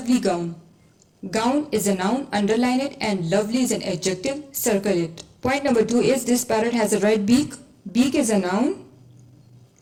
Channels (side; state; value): both; identical; correlation 1.00